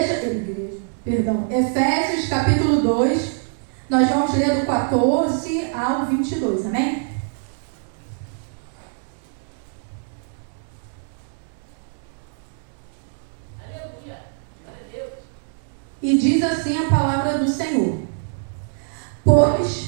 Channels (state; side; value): silent; left; 63 dB below the other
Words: Efésios capítulo 2, nós vamos ler do 14 ao 22, amém? Aleluia. Glória a Deus. E diz assim a palavra do Senhor: